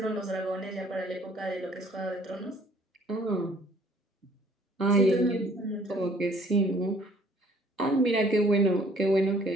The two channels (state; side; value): normal; both; correlation 0.58